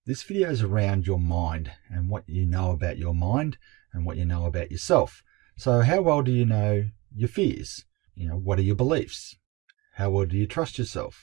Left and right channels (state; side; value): quieter; left; 23.6 dB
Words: This video is around your mind and what you know about your mind and what you know about yourself. So how well do you know your fears? What are your beliefs? How well do you trust